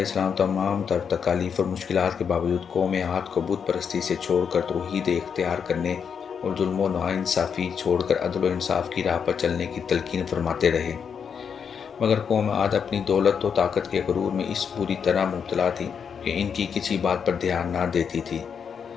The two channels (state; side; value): quieter; right; 6.9 dB